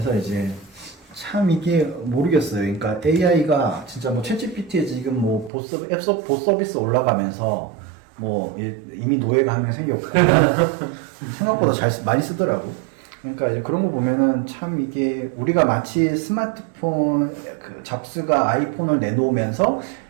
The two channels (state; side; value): drops out; left; at 5.5 s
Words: 이제 참 이게 모르겠어요. 그러니까 AI가 진짜 뭐 챗GPT에 지금 뭐 봇 서비스 올라가면서 뭐 이미 노예가 한 명 생겼고 생각보다 많이 쓰더라고. 그러니까 이제 그런 거 보면은 참 이게 우리가 마치 스마트폰 그 잡스가 아이폰을 내놓으면서